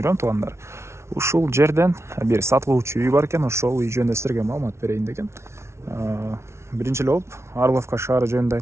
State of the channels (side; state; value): left; late; 0.13 ms